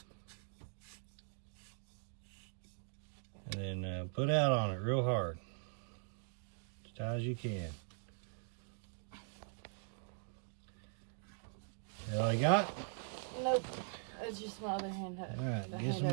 And then put out on it real hard. As tight as you can. That all you got? Nope. It's just my other hand. All right, get some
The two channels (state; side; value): silent; left; digital silence